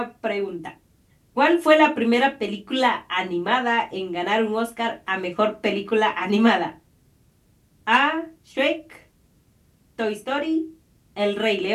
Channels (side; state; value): both; identical; correlation 1.00